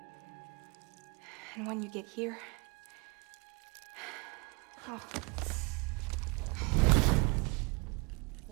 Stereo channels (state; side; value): quieter; left; 30.2 dB